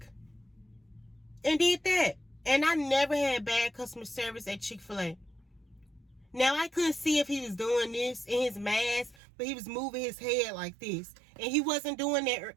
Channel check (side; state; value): left; drops out; at 9.2 s